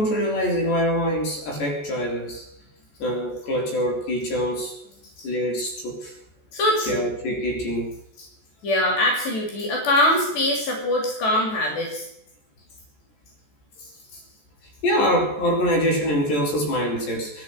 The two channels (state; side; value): late; right; 14 ms